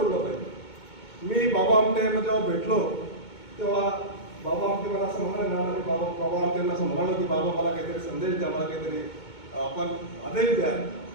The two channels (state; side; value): late; right; 2.2 ms